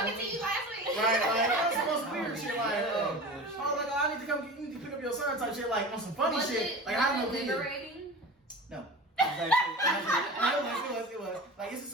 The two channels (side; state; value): both; normal; correlation 0.33